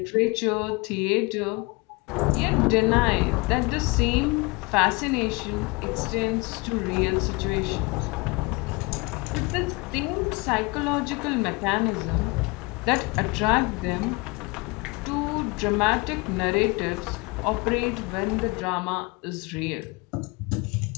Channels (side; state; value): right; quieter; 26.5 dB